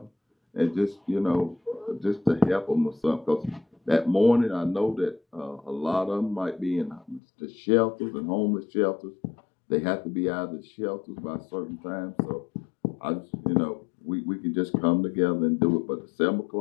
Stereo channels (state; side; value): drops out; right; at 7.2 s